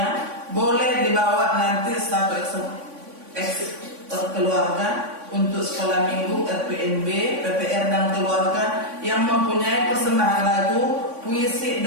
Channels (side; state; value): left; late; 3.5 ms